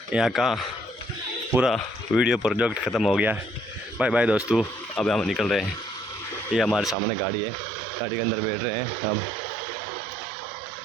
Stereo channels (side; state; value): left; drops out; at 7.0 s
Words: यहाँ का पूरा वीडियो प्रोजेक्ट ख़त्म हो गया। बाय बाय दोस्तों, अब हम निकल रहे हैं। ये हमारे सामने गाड़ी है, गाड़ी के अंदर बैठ रहे हैं हम।